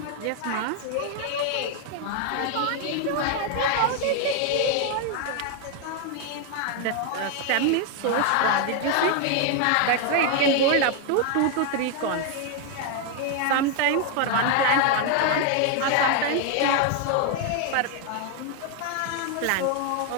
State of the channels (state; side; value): different; both; correlation 0.00